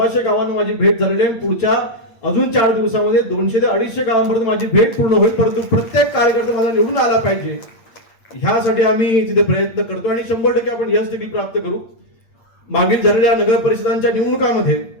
गावांना माझी भेट झालेली आहे. पुढच्या अजून 4 दिवसामध्ये 200 ते 250 गावांपर्यंत माझी भेट पूर्ण होईल. परंतु प्रत्येक कार्यकर्ता माझा निवडून आला पाहिजे, ह्यासाठी आम्ही तिथे प्रयत्न करतो आणि 100% आपण यश देखील प्राप्त करू. मागील झालेल्या नगर परिषदांच्या निवडणुकामध्ये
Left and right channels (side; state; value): right; late; 8.6 ms